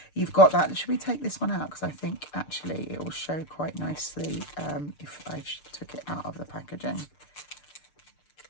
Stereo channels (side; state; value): right; late; 6.7 ms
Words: You've got that. Should we take this one out? Because I think actually it will show quite nicely if I took it out of the packaging.